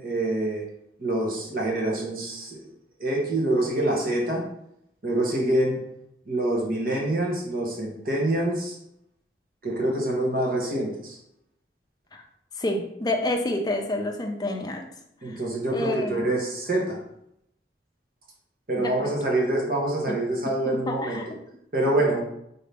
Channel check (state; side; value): normal; both; correlation 0.53